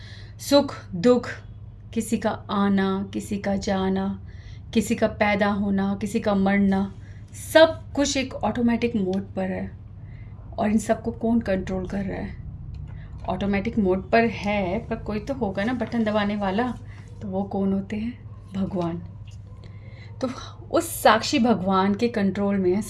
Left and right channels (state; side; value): identical; both; correlation 1.00